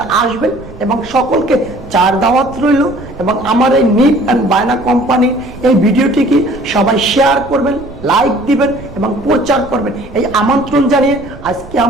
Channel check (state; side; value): noise; right; rumble, 17 dB below the sound